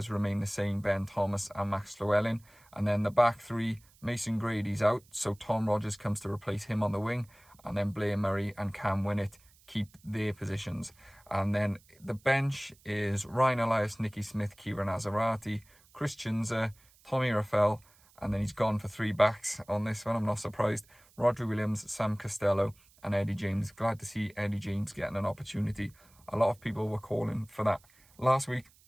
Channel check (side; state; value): right; noise; hiss, 29 dB below the sound